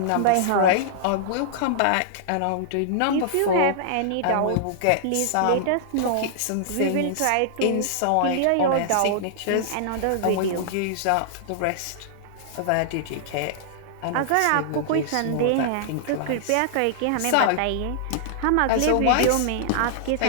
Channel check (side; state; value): both; different; correlation -0.01